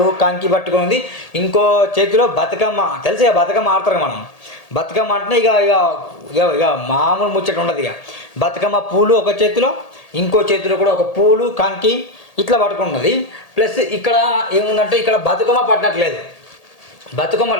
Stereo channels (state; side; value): late; right; 1.8 ms